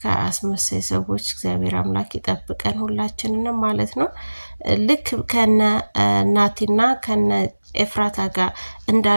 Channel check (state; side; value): inverted; both; correlation -1.00